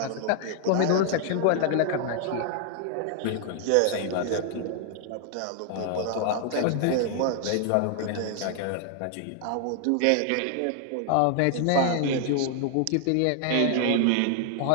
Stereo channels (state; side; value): different; both; correlation 0.00